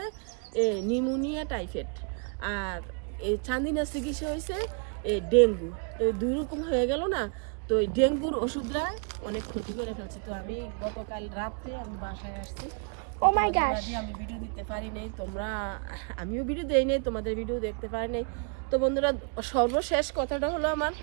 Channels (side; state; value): left; quieter; 39.8 dB